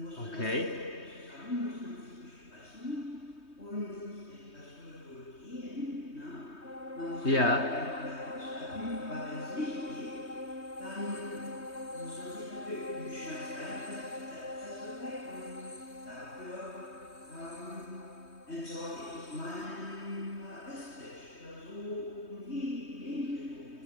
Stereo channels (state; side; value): late; right; 3.2 ms